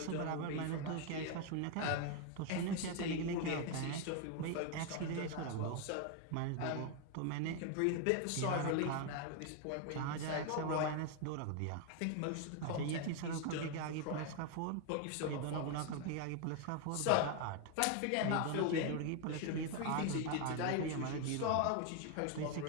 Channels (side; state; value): both; different; correlation 0.01